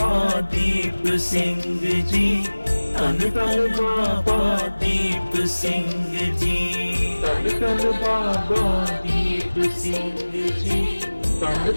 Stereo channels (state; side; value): inverted; both; correlation -1.00